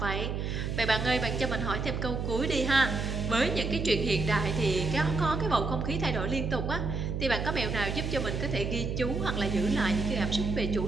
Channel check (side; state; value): right; noise; hum, 2 dB below the sound